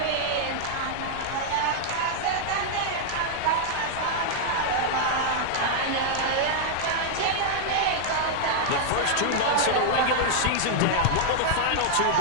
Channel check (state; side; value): different; both; correlation -0.01